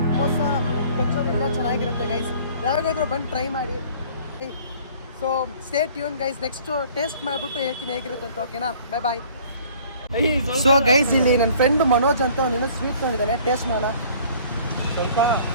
ಸಮೋಸ, ಕಚೋರಿ ಎಲ್ಲ ಚೆನ್ನಾಗಿರುತ್ತೆ ಗೈಸ್. ಯಾವಾಗಾದ್ರೂ ಬಂದು ಟ್ರೈ ಮಾಡಿ. So stay tune guys. Next taste ಮಾಡಿಬಿಟ್ಟು ಹೇಳ್ತೀನಿ ಹೇಗಿರುತ್ತೆ ಅಂತ. ಓಕೆನಾ? Bye bye. ಸೊ ಗೈಸ್, ಇಲ್ಲಿ ನನ್ನ ಫ್ರೆಂಡ್ ಮನೋಜ್ ಅಂತ ಅವನೇನೋ ಸ್ವೀಟ್ ತೊಗೊಂಡಿದ್ದಾನೆ. ಟೇಸ್ಟ್ ಮಾಡೋಣ. ಸ್ವಲ್ಪ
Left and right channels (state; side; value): inverted; both; correlation -0.52